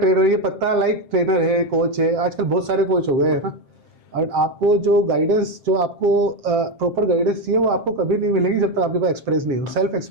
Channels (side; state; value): left; late; 7.5 ms